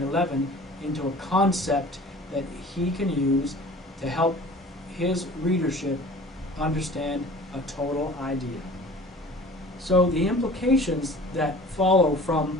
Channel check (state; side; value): normal; both; correlation 0.44